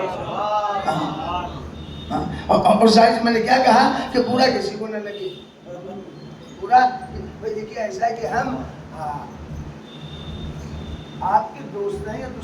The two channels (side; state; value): both; identical; correlation 1.00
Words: اور ظاہر میں نے کیا کہا کہ پورا کسی کو نہ لگے، پورا دیکھیے ایسا ہے کہ ہم آپ کے دوست ہیں یا